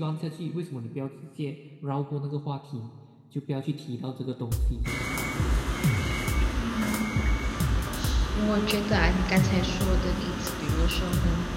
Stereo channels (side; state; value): both; identical; correlation 1.00